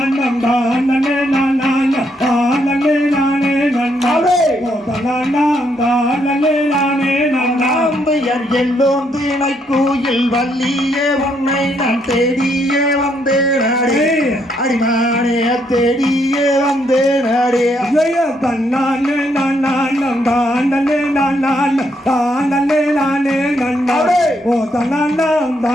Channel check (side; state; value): both; normal; correlation 0.74